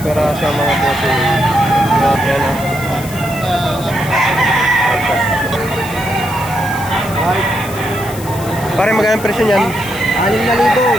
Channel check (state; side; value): noise; left; hiss, 14 dB below the sound